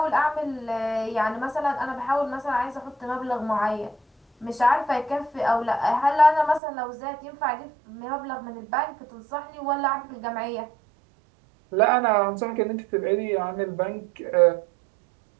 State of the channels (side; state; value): left; drops out; at 6.6 s